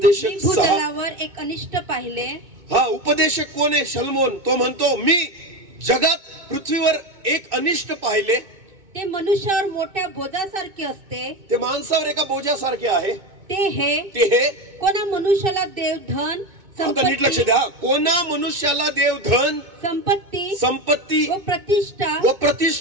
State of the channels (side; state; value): left; late; 2.2 ms